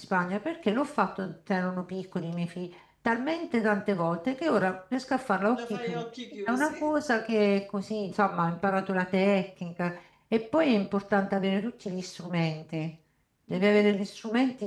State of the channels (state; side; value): identical; both; correlation 1.00